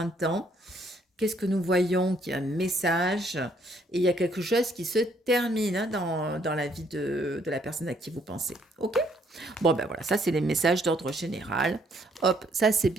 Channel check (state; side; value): normal; both; correlation 0.67